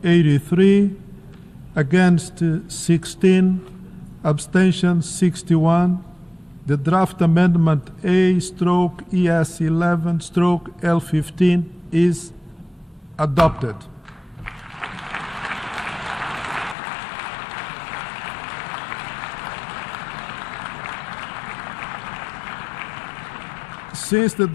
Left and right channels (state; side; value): drops out; right; at 16.8 s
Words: 83, against 16, abstention 61. The draft amendment A/ES11/L15 is adopted. Since the